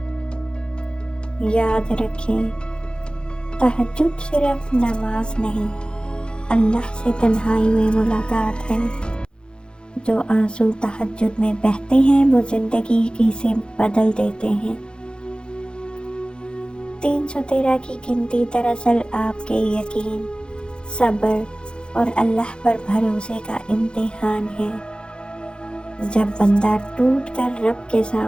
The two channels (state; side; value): late; right; 0.050 ms